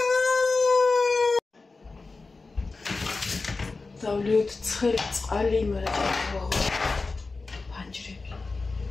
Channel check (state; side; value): quieter; right; 3.8 dB